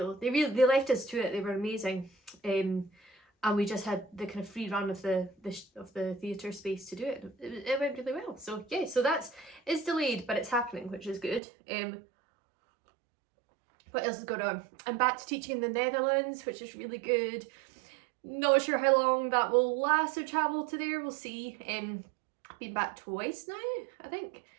They left us to it. They were amazing, and we just had the kind of free run of the theatre space to do it. It went really well. So yeah, so it's delayed, but it's happening, which is good. What else is going on? I'm back to teaching in the Netherlands, which is really good. Not sure how long that will last, to travel to there, we'll see. I've been back twice now, I think.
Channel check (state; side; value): drops out; left; at 11.4 s